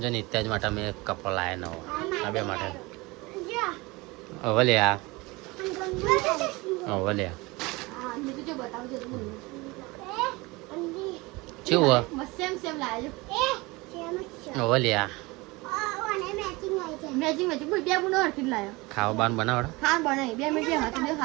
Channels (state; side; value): quieter; left; 23.4 dB